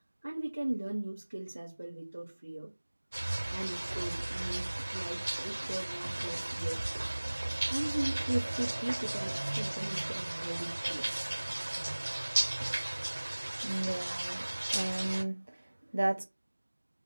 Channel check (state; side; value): inverted; both; correlation -1.00